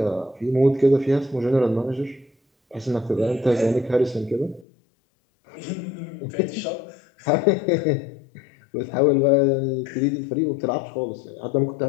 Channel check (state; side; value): drops out; right; at 4.7 s